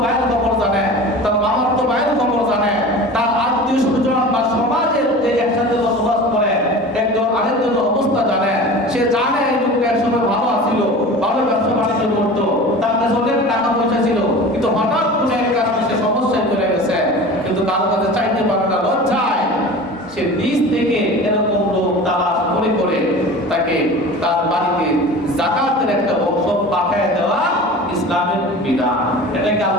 ভাইয়ের খবর জানে, তার মামার তো ভাইয়ের খবর জানে, তার আত্মীয় স্বজন বা সমাজের যে একসাথে বসবাস করে একজন আরেকজনের অবস্থা জানে, সে জানে এই লোকটা একসময় ভালো আছিল, ভালো ব্যবসা বাণিজ্য করতো, তার কাছে অনেক টাকা পয়সা ছিল, কিন্তু হঠাৎ কোনো এক কারণে সে সমস্যায় চলে গেছে, কিন্তু কারো কাছে চাইতে পারে না লজ্জায়, সে নিজ থেকে এরকম লোক তালাশ করে করে তাকে তার বাড়িতে যাকাতের একটা অংশ পাঠিয়ে দেওয়া ইসলামের বিধান। এটাকে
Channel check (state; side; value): normal; both; correlation 0.37